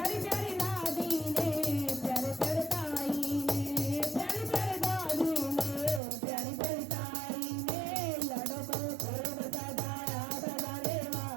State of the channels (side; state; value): left; drops out; at 6.0 s